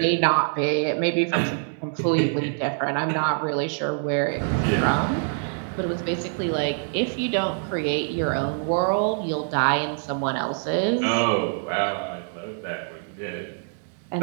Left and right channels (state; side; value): silent; left; 62 dB below the other